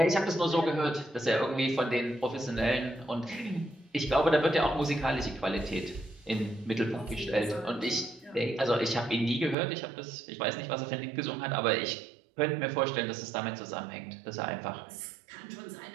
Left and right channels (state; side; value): drops out; left; at 9.6 s